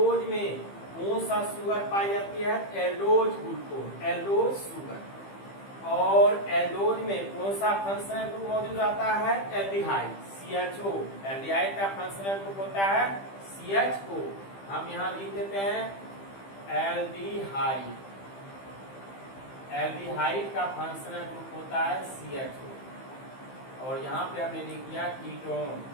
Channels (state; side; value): late; right; 15 ms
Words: में कौन सा शुगर पाई जाती है? Aldose glucose, aldose sugar. और एल्डोज में कौन सा फंक्शनल ग्रुप मौजूद रहता है? Aldehyde, CHO। एल्डिहाइड का फंक्शनल ग्रुप होता है CHO। हम यहाँ लिख देते हैं एल्डिहाइड। एल्डिहाइड का फंक्शनल ग्रुप होता है CHO। और यहाँ पे हमने लिख दिया कीटोन।